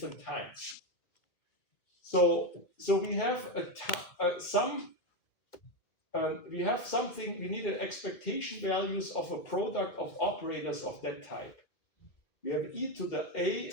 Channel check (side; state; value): right; late; 2.0 ms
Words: So we have we have something. We need an expectation values of a product of operators of that type. We have e to the a